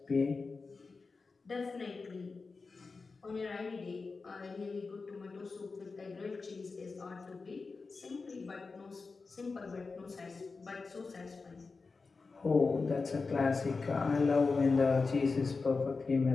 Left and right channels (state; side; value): quieter; right; 4.3 dB